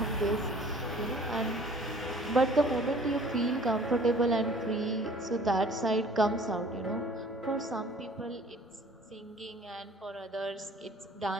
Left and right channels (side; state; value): both; normal; correlation 0.51